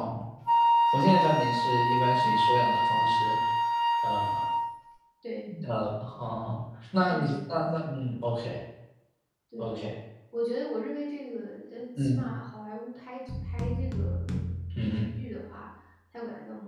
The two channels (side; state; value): both; identical; correlation 1.00